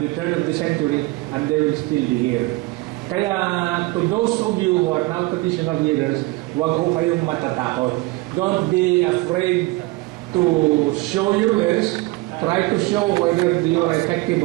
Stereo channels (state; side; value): quieter; left; 22.0 dB